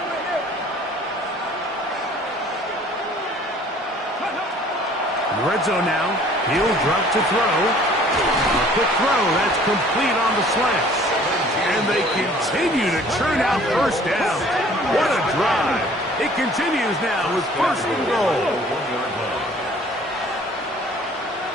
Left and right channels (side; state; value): both; normal; correlation 0.53